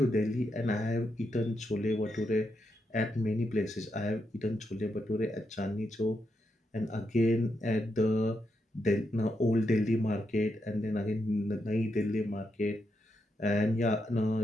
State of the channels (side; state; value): both; normal; correlation 0.82